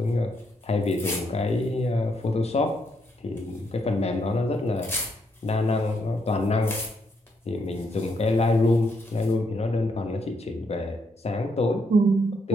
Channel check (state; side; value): normal; both; correlation 0.76